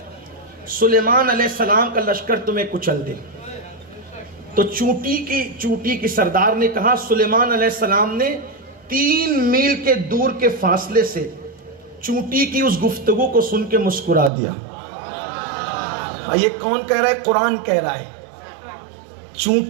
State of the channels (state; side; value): drops out; left; at 14.3 s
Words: سلیمان علیہ السلام کا لشکر تمہیں کچل دے۔ تو چونٹی کی سردار نے کہا، سلیمان علیہ السلام نے 3 میل کے دور کے فاصلے سے چونٹی کی اس گفتگو کو سن کے مسکرا دیا۔ یہ کون کہہ رہا ہے؟ قرآن کہہ رہا ہے۔